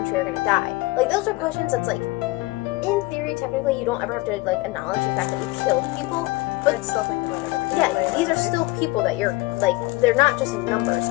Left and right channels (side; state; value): right; quieter; 21.5 dB